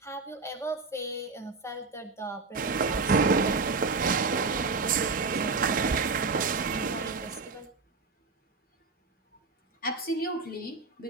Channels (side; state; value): left; quieter; 4.2 dB